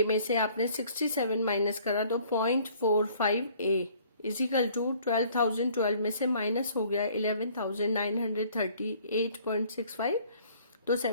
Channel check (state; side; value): inverted; both; correlation -0.57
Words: में से आपने 67 माइनस करा तो 0.45 ए इजिकल टू 12,012 में से माइनस हो गया 11,938.65 तो